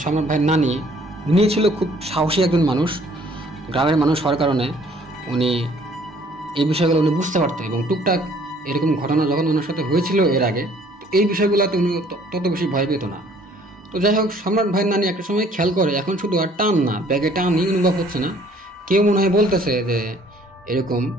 সম্রাট ভাইয়ের নানি, উনি ছিল খুব সাহসী একজন মানুষ, গ্রামের মানুষ হওয়ার কারণে উনি এই বিষয়গুলো উনি বুঝতে পারতেন। এবং টুকটাক এরকম ঘটনা যখন ওনার সাথে হয়েছিল এর আগে, এই বিষয়গুলোতে উনি তত বেশি ভয় পেত না। তো যাই হোক, সম্রাট ভাইয়ের নানি একটা সময় খেয়াল করে এখন শুধু আর টান না, ব্যাগে টানই অনুভব হচ্ছে না, কেউ মনে হয় বলতেছে যে এরকম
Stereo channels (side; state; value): both; normal; correlation 0.58